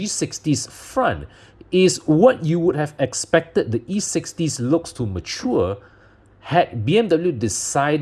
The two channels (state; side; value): identical; both; correlation 1.00